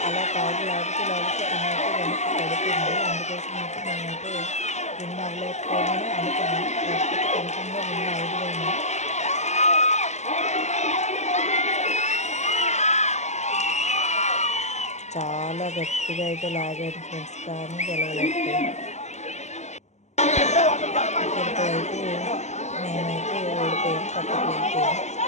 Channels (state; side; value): late; right; 0.33 ms